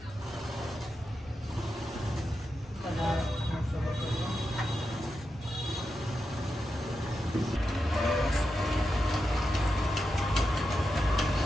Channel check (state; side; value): normal; both; correlation 0.88